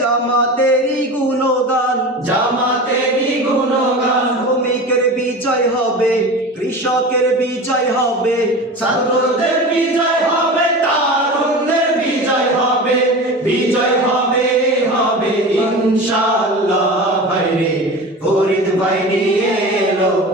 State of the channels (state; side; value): normal; both; correlation 0.32